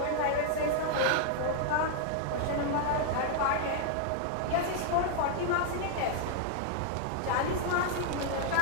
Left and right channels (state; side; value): different; both; correlation 0.00